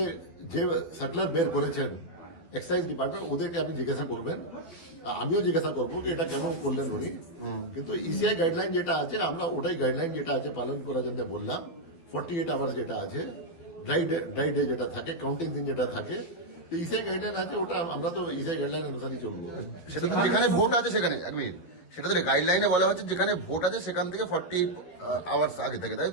যে সার্কুলার বের করেছেন এক্সাইজ ডিপার্টমেন্ট, ওদেরকে আপনি জিজ্ঞাসা করবেন, আমিও জিজ্ঞাসা করবো যে এটা কেন করলেন উনি। কিন্তু ইসিআই গাইডলাইন যেটা আছে, আমরা ওটাই গাইডলাইন যেটা আছে পালন করার জন্য বললাম। 48 আওয়ার্স যেটা আছে, ড্রাই ডে যেটা থাকে, কাউন্টিং দিন যেটা থাকে, তো ইসিআই গাইডলাইন আছে, ওটা আমরা তো ইসিআই গাইডলাইন অনুসারেই চলবো। যেখানে ভোট আছে সেখানে এক মিনিট, সেটা তো গাইডলাইনে বলা হচ্ছে যেখানে ভোট আছে সেখান থেকে 40 আওয়ার্স আগে থেকে, তাই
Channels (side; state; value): right; late; 12 ms